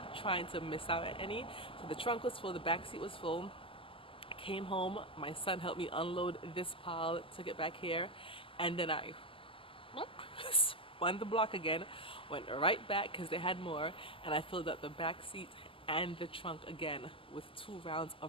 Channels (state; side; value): late; right; 0.25 ms